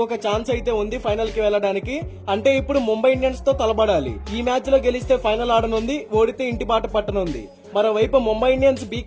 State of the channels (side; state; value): both; identical; correlation 1.00